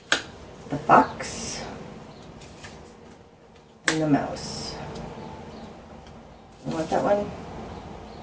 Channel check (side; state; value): both; identical; correlation 1.00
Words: the fox, and the mouse. You want that one?